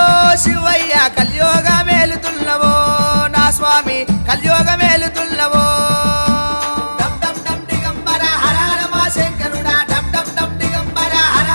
శివయ్య కలియోగ మేలుతున్నవో నా స్వామి కలియోగ మేలుతున్నవో డమ్ డమ్ డమ్ దిగంబర హర హర మా శంకరుడా డమ్ డమ్ డమ్ దిగంబర హర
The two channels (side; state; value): both; inverted; correlation -1.00